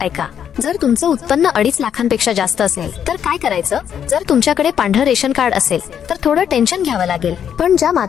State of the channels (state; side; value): quieter; right; 8.7 dB